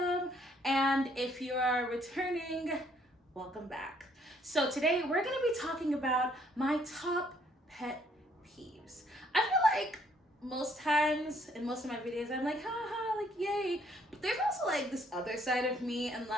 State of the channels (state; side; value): normal; both; correlation 0.65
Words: And if you are returning, welcome back. So today we're gonna be talking about my top pet peeves. I feel like most times in most of my videos, I'm like, haha, like yay. But there's also like this other side of me, and